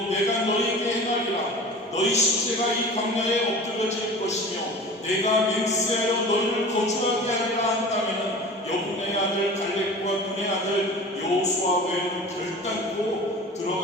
내가 너희에게 행하리라. 너희 시체가 이 광야에 엎드려질 것이며 내가 맹세하여 너희를 거주하게 하리라 한다면 여분의 아들 갈렙과 눈의 아들 여호수아 외에는 결단코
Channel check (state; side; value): normal; both; correlation 0.37